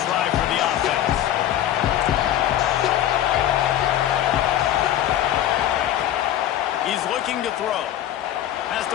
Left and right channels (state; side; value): quieter; right; 11.9 dB